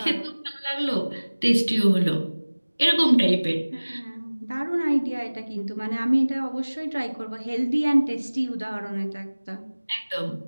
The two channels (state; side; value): inverted; both; correlation -1.00